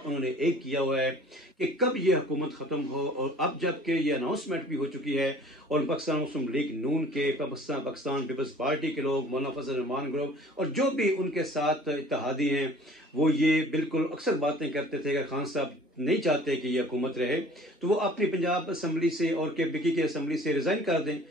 उन्होंने एक किया हुआ है कि कब ये हुकूमत ख़त्म हो। और अब जबकि ये अनाउंसमेंट भी हो चुकी है और पाकिस्तान मुस्लिम लीग नून के, पाकिस्तान पीपल्स पार्टी के लोग, मौलाना फजल रहमान ग्रुप और जो भी उनके साथ इत्तेहादी हैं, वो ये बिल्कुल अक्सर बातें करते थे कि खान साहब नहीं चाहते कि ये हुकूमत रहे तो वो अपनी पंजाब असम्बली से और KPK की असम्बली से रिज़ाइन कर दें।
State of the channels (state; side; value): normal; both; correlation 0.49